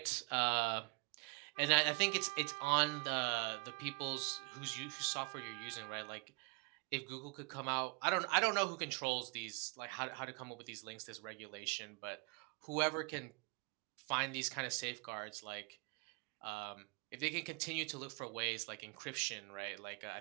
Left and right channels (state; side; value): quieter; left; 31.4 dB